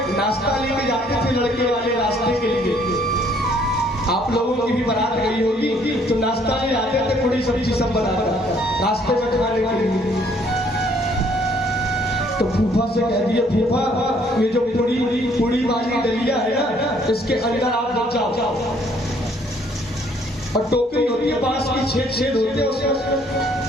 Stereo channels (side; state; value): both; normal; correlation 0.63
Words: नाश्ता लेके जाते थे लड़के वाले रास्ते के लिए। आप लोगों की भी बारात गई होगी तो नाश्ता ले आते थे, पूरी सब्जी सब बनाकर रास्ते में खाने के लिए। तो फूफा से कह दिया फूफा ये जो पूरी वाली डलिया है ना, इसके अंदर आप लग जाओ। और टोकरी होती है बांस की, छेद होते हैं उसमें।